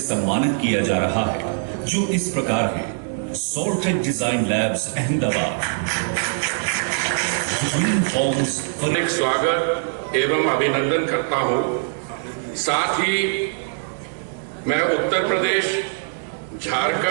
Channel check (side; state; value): left; silent; digital silence